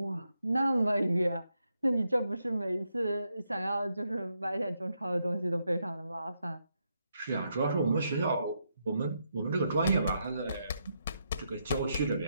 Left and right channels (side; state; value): both; inverted; correlation -0.80